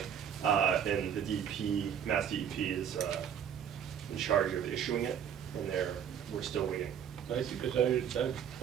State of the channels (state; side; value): quieter; left; 8.6 dB